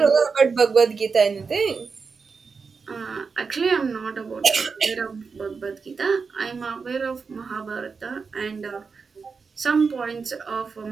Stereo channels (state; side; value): quieter; left; 5.1 dB